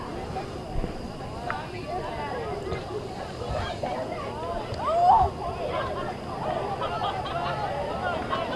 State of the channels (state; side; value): identical; both; correlation 1.00